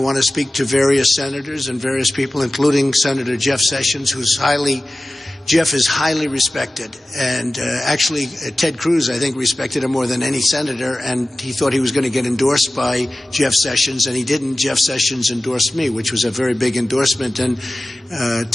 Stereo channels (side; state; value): both; normal; correlation 0.96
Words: to speak to various senators and various people, including Senator Jeff Sessions, who's highly Jeff is highly respected, and actually Ted Cruz, I think, respected him more than any senator, and he thought he was going to get endorsed by Jeff Sessions, and he didn't. Jeff Sessions endorsed me, which was a very big endorsement, and